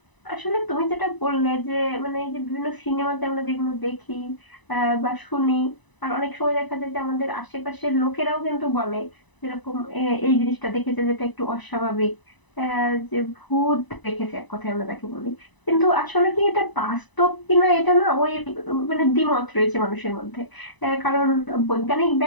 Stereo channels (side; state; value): right; late; 1.0 ms